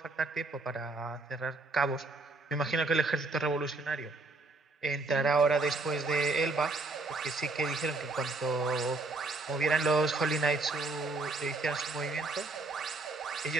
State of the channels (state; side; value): quieter; left; 3.4 dB